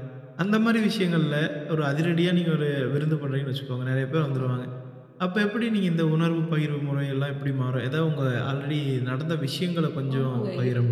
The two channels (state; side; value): identical; both; correlation 1.00